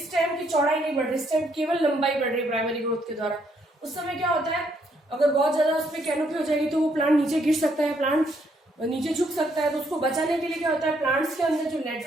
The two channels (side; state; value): both; normal; correlation 0.71